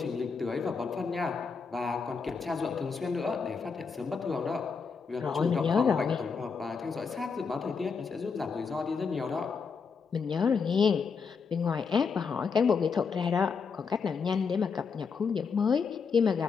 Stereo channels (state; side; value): quieter; right; 5.5 dB